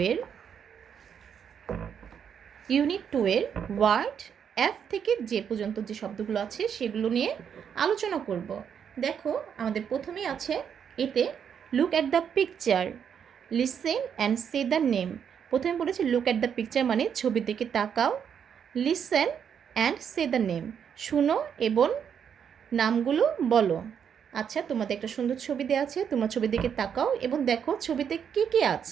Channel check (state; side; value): quieter; left; 7.8 dB